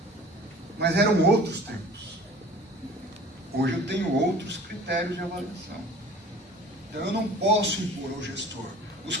Mas eram outros tempos. Hoje eu tenho outros critérios de avaliação. Então eu não posso impor ao gestor os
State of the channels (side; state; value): both; normal; correlation 0.46